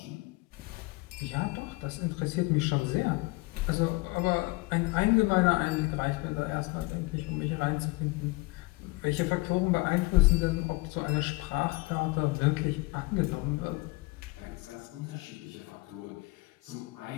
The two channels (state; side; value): quieter; right; 24.0 dB